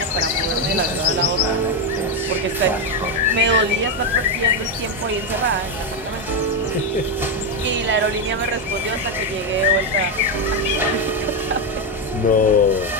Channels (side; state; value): both; normal; correlation 0.07